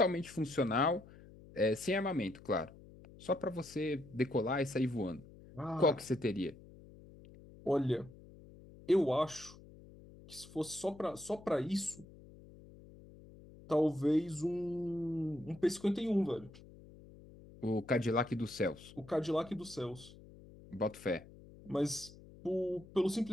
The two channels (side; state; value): left; noise; hum, 20 dB below the sound